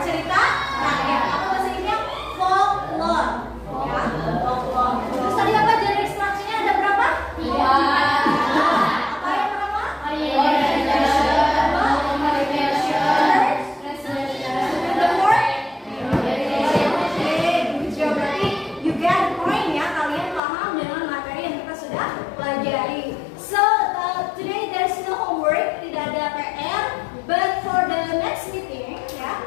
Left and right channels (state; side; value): drops out; right; at 20.4 s